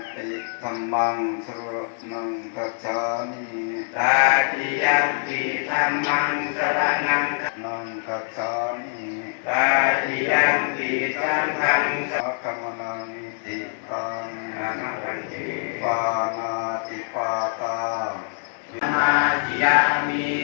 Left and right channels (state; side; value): silent; right; digital silence